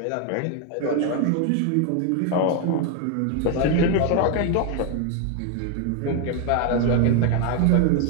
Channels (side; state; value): both; different; correlation 0.01